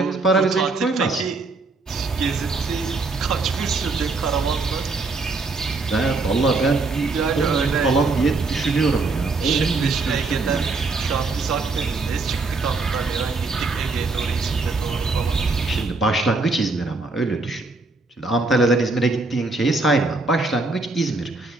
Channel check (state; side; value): quieter; left; 3.6 dB